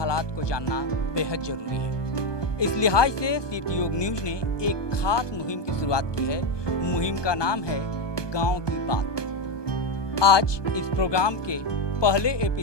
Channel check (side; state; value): right; late; 1.2 ms